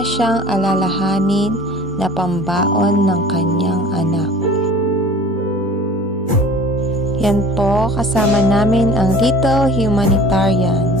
siyang alalahanin na pambaon ng kanyang anak. Yan po, kasama namin ang Little Humanitarian,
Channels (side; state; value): both; normal; correlation 0.44